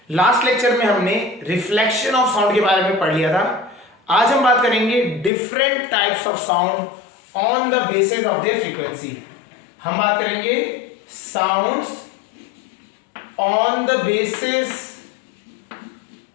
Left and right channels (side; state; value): right; drops out; at 5.3 s